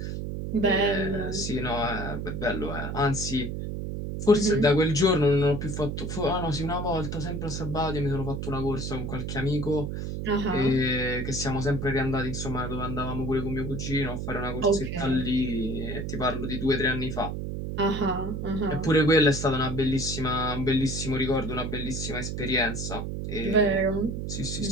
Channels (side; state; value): right; noise; hum, 4 dB below the sound